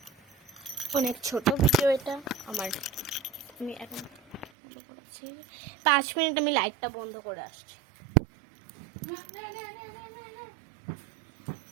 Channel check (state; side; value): drops out; left; at 4.5 s